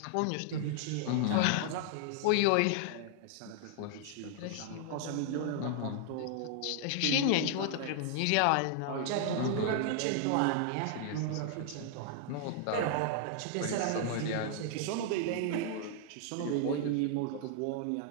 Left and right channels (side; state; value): both; different; correlation -0.01